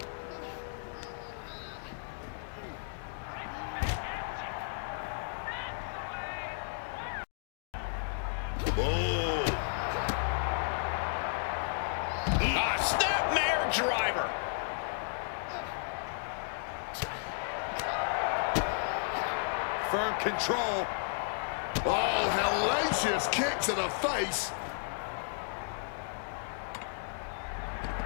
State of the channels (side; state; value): right; silent; digital silence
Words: Driver. Firm control. Oh, hellacious kick to the face.